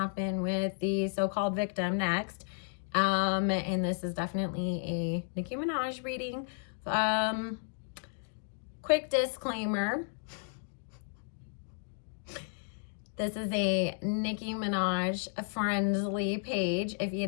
with the so-called victim next. And this is definitely a Nicki Minaj reading. Quick disclaimer. This is a Nicki Minaj friendly page. If you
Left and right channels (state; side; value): silent; right; digital silence